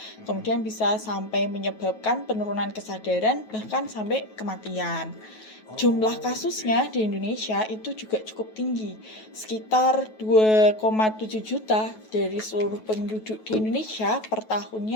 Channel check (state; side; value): late; right; 9.3 ms